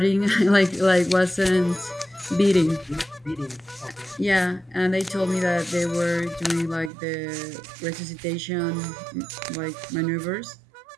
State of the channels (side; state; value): left; drops out; at 6.9 s